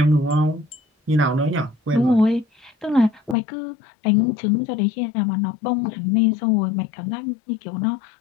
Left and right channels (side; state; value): right; drops out; at 3.4 s